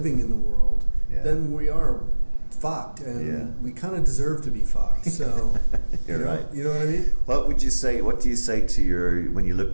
in the world, then we are fucked, and we kind of deserve to be fucked. So, you know what I mean? What do you say to when you look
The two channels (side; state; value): both; inverted; correlation -1.00